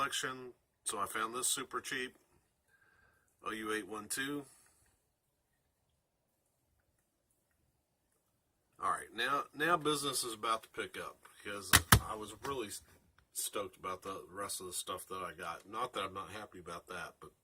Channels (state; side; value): identical; both; correlation 1.00